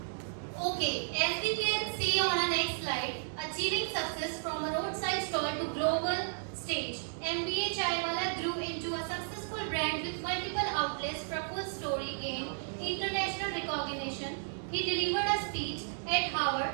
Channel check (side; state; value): left; silent; digital silence